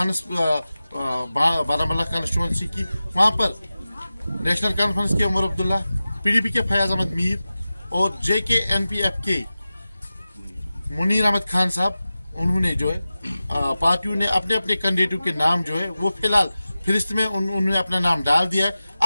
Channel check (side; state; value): both; inverted; correlation -0.95